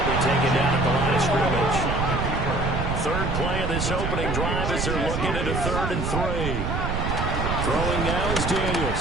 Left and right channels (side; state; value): right; noise; rumble, 1 dB below the sound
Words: taken down at the line of scrimmage. Third play of this opening drive as they're looking at a 3rd and 3. Throwing now is